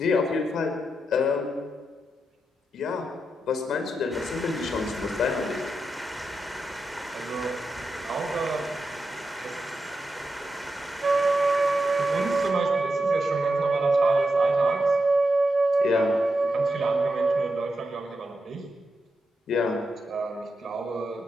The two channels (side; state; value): both; normal; correlation 0.87